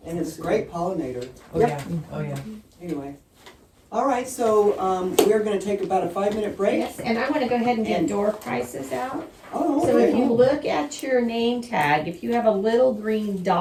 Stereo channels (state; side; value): identical; both; correlation 1.00